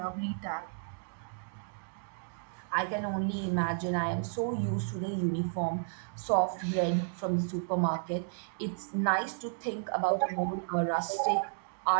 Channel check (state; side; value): silent; left; digital silence